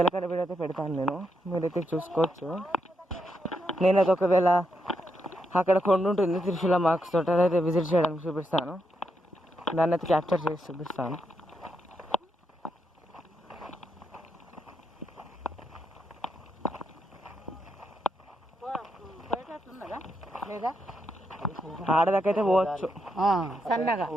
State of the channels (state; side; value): normal; both; correlation 0.82